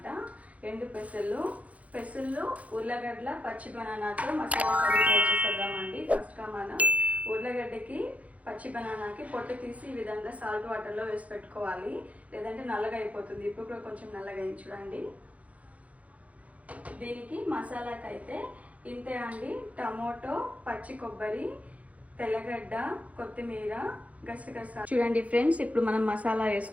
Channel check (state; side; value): late; left; 0.068 ms